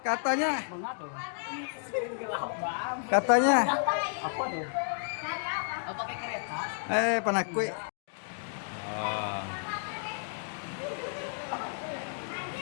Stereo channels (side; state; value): right; silent; digital silence